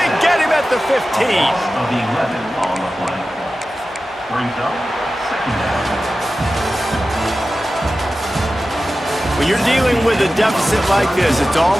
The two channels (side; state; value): both; normal; correlation 0.94